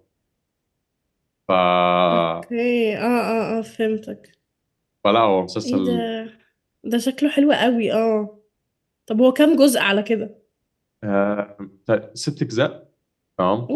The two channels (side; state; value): both; identical; correlation 1.00